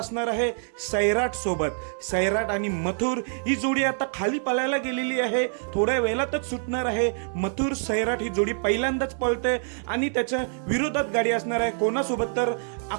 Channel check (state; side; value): silent; left; 61 dB below the other